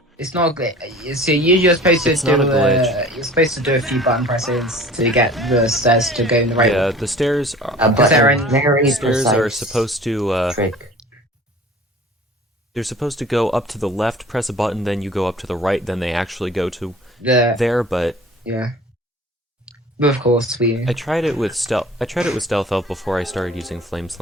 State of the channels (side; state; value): both; normal; correlation 0.45